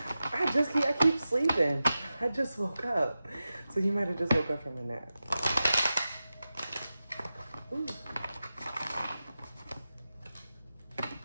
I keep sleeping. I just woke up. So you might have just woke up from a nap. Ooh.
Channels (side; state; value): both; inverted; correlation -0.93